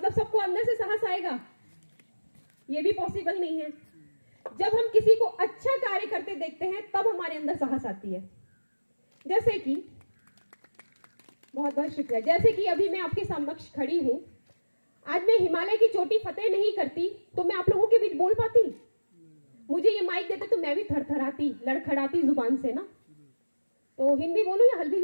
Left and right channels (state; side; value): inverted; both; correlation -1.00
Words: सबको अंदर से साहस आएगा? ये भी पॉसिबल नहीं है। जब हम किसी को अच्छा कार्य करते देखते हैं तब हमारे अंदर साहस आती है। जैसे कि बहुत बहुत शुक्रिया, जैसे कि अभी मैं आपके समक्ष खड़ी हूं, आज मैं हिमालय की चोटी फतेह नहीं करती तो मैं आप लोगों के बीच बोल पाती? मुझे ये माइक देते तो मैं भी थरथराती, लड़खड़ाती जुबान से ना। तो हिंदी बोलूं या हल्बी